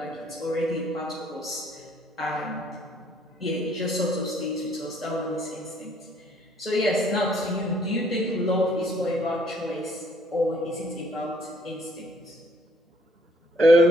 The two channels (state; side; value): normal; both; correlation 0.63